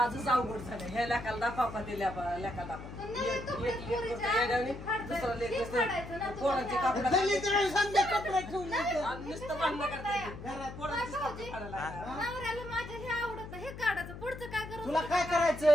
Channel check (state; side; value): noise; left; hum, 11 dB below the sound